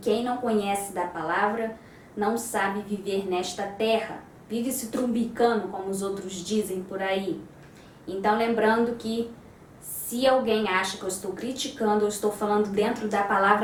não conhece da palavra não sabe viver nesta terra. Vive se trumbicando, como os outros dizem por aí. Então, lembrando que se alguém acha que eu estou criticando, eu estou falando dentro da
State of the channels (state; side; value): identical; both; correlation 1.00